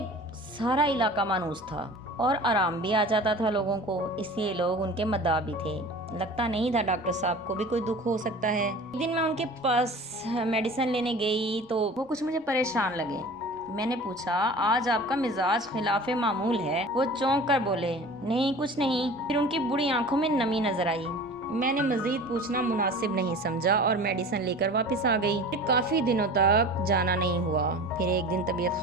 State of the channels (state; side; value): normal; both; correlation 0.39